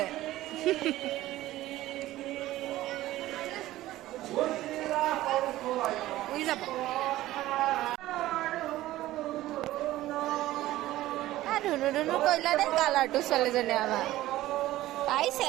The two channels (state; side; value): quieter; left; 15.7 dB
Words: উৰি যাব ধুনু ধুনু কৰিলা দেই কালাৰটো ছোৱালীজনী আমাৰ